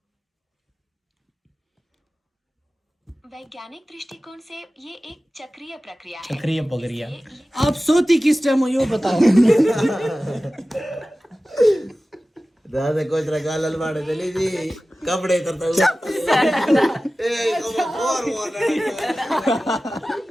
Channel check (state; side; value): normal; both; correlation 0.96